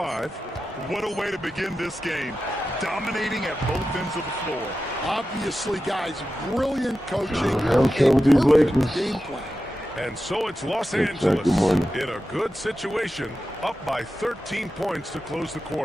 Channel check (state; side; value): normal; both; correlation 0.92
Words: What a way to begin this game. Dominating at both ends of the floor. Obviously, guys, brilliant coaching. I'm sure with these Lakers. Game plan. And so it's Los Good Angeles morning. in a good situation, up by 13 points to close the